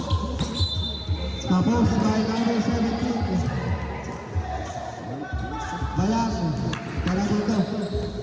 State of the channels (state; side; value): identical; both; correlation 1.00